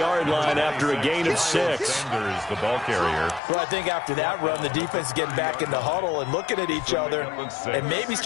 line after a gain of 6. Sanders, the ball carrier. Well, I think after that run, the defense is getting back in the huddle and looking at each other and maybe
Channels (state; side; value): drops out; right; at 3.4 s